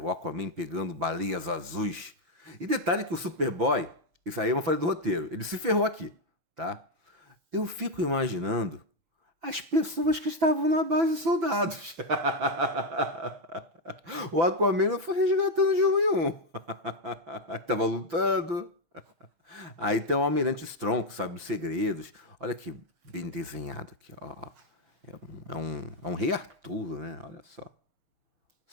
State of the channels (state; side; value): late; left; 6.3 ms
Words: Aquaman pegando baleias azuis. E detalhe que o Superboy, isso aí é uma falha do roteiro, ele se ferrou aqui, tá? Eu fico imaginando as pessoas que estavam na base de soldados. O Aquaman não foi resgatando de um em um. Tava lutando. Aí tem o Almirante Strong, que sabe os segredos. Olha que bem desenhado aqui, ó. É um Rei Arthur, né? Olha só.